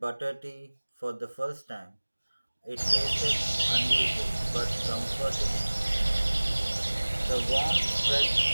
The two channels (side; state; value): both; inverted; correlation -1.00